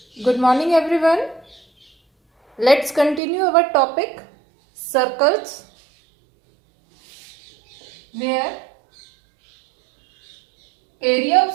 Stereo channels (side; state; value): left; drops out; at 3.2 s